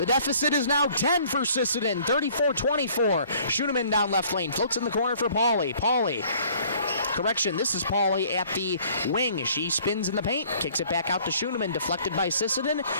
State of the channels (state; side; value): inverted; both; correlation -0.56